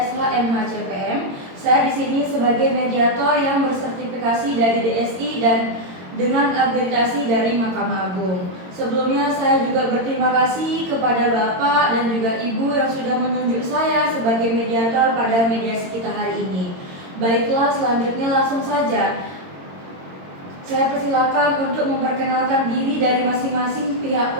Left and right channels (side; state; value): left; late; 22 ms